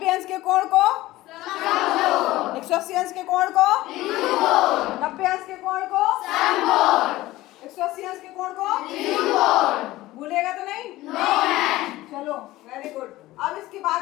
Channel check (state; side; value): quieter; right; 17.3 dB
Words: अंश के कोण को 180 अंश के कोण को 90 अंश के कोण को 180 अंश के कोण को भूलेगा तो नहीं? चलो वेरी गुड। अब इसके बाद